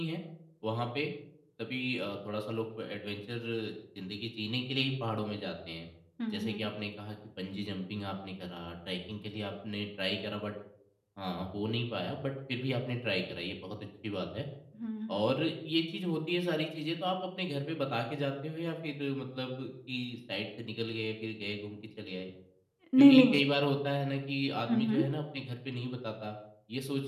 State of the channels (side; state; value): both; identical; correlation 1.00